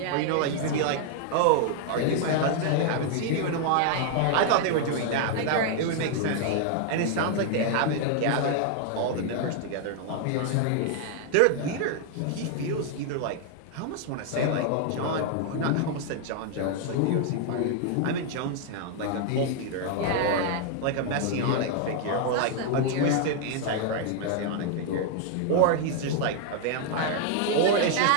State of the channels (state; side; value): different; both; correlation 0.00